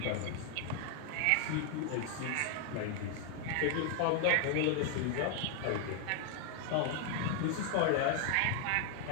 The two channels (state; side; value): different; both; correlation 0.00